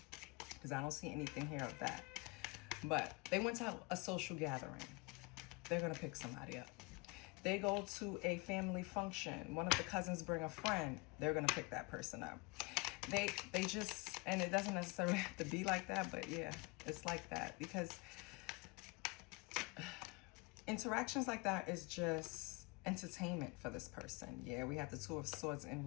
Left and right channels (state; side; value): quieter; right; 27.4 dB